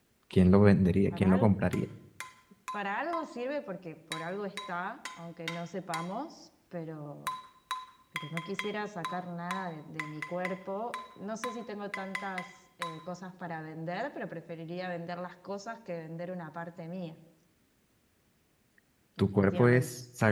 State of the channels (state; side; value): identical; both; correlation 1.00